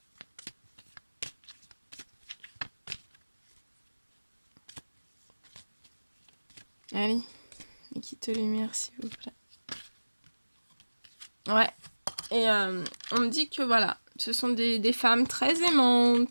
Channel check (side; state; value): both; inverted; correlation -1.00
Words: Allez. Et quitte lumière, s'il vous plaît. Ouais. Et on me dit que, voilà, ce sont des femmes très